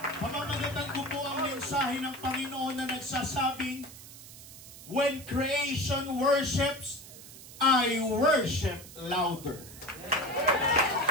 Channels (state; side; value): noise; right; hiss, 16 dB below the sound